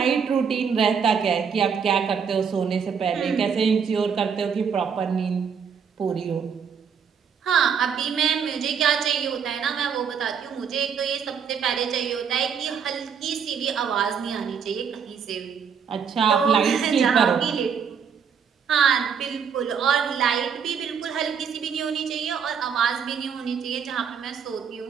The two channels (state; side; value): quieter; left; 6.9 dB